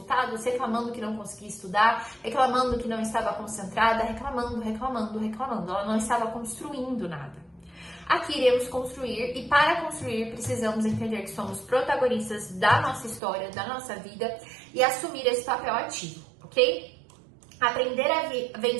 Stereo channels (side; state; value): left; drops out; at 13.2 s